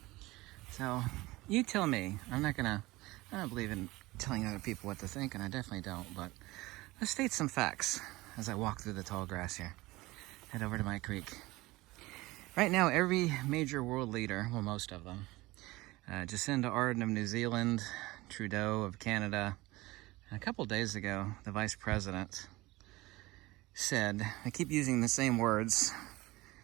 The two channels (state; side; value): quieter; left; 20.2 dB